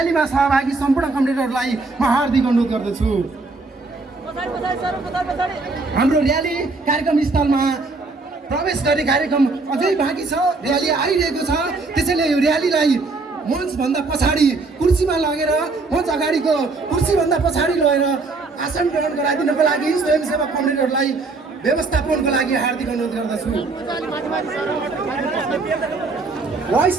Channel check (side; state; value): left; quieter; 3.7 dB